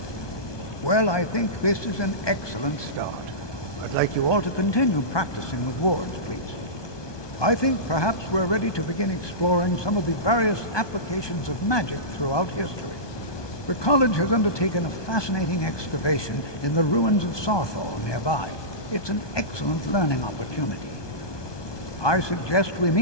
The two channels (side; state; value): right; late; 1.2 ms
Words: Well, I think this is an excellent start. I'd like you all to continue practicing with wards, please. I think perhaps we're ready to begin exploring some of the various applications of magic throughout history. The college has undertaken a fascinating excavation in the ruins of Saarthal nearby. It's an excellent learning opportunity. I suggest we